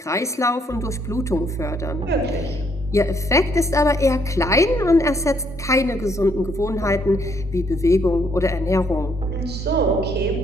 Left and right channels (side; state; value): both; normal; correlation 0.70